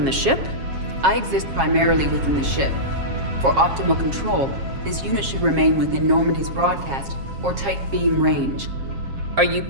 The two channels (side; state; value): left; late; 7.4 ms